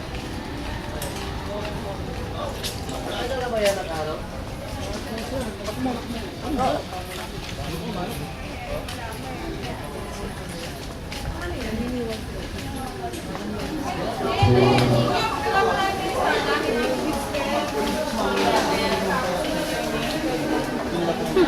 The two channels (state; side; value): identical; both; correlation 1.00